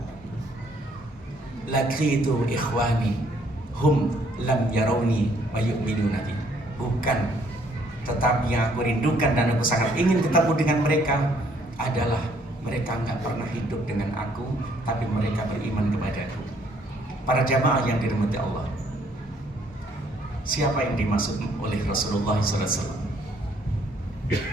laqitu ikhwani hum lam yarawni wa yu'minuna bi, bukan, tetapi yang aku rindukan dan aku sangat ingin ketemu dengan mereka adalah mereka nggak pernah hidup dengan aku, tapi mereka beriman kepadaku. Para jamaah yang dirahmati Allah, siapa yang dimaksud oleh Rasulullah SAW?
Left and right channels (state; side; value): normal; both; correlation 0.65